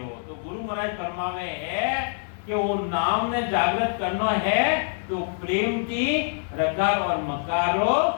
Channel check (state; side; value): silent; right; 62 dB below the other